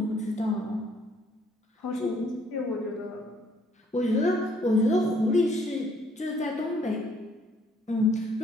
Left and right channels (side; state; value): both; normal; correlation 0.65